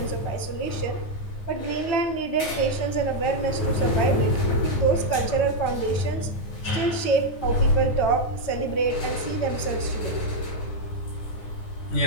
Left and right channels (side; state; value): right; late; 9.6 ms